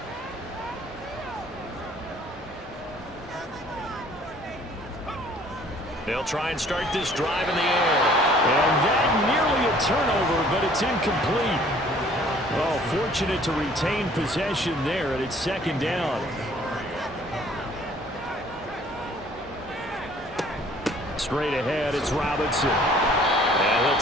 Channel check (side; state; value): both; normal; correlation 0.56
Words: They'll try and start this drive in the air. And that nearly a turnover, but it's incomplete. Oh, fortunate to retain possession there, and it's second down. Straight ahead, it's Robinson. And he'll